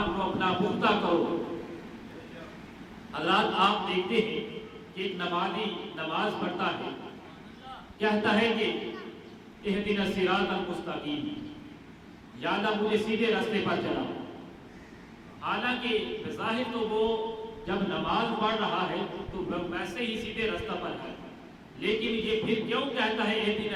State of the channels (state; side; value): identical; both; correlation 1.00